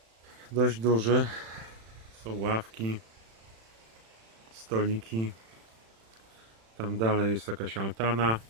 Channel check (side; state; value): left; late; 36 ms